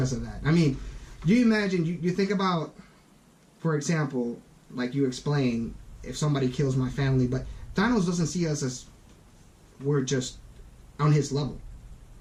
of that. I mean, you imagine you think about, for example, like you explained, if somebody kills my family, but Thanos doesn't see us as we're just on his level.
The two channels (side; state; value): both; identical; correlation 1.00